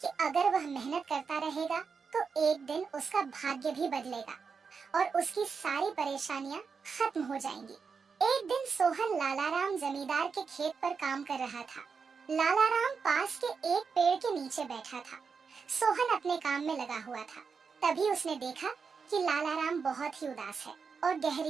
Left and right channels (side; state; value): left; quieter; 5.5 dB